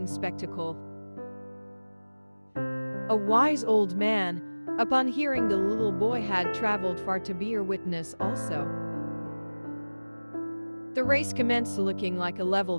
spectacle. A wise old man, upon hearing the little boy had traveled far to be a witness also. The race commenced, looking like a level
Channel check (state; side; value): inverted; both; correlation -1.00